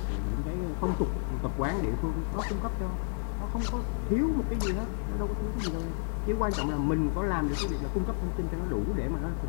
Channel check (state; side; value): silent; right; 56 dB below the other